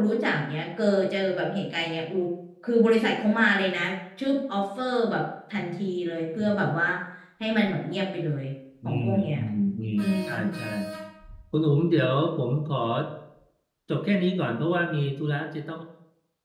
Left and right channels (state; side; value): identical; both; correlation 1.00